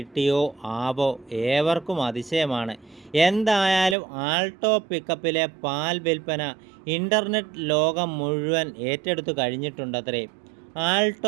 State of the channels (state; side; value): drops out; left; at 4.0 s